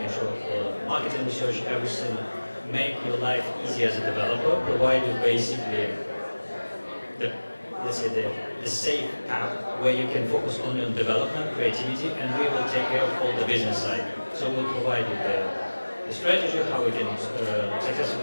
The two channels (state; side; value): inverted; both; correlation -1.00